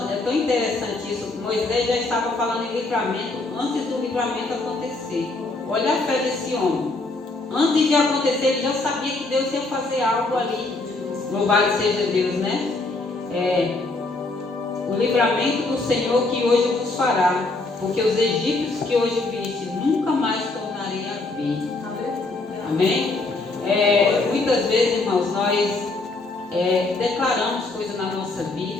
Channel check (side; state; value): right; quieter; 3.3 dB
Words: é tão interessante isso. Moisés já estava falando em livramento antes do livramento acontecer. Olha a fé desse homem. Antes de acontecer, ele já sabia que Deus ia fazer algo ali. Louvado seja Deus, né? O livramento do Senhor que hoje vos fará, porque os egípcios que hoje viste, nunca mais tornarei a ver. Amém? Muitas vezes, irmãos, nós declaramos coisas na nossa